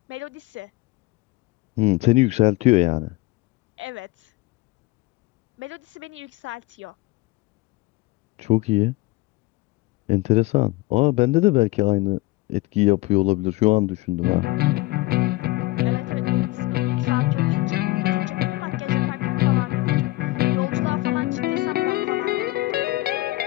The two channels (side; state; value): right; quieter; 20.5 dB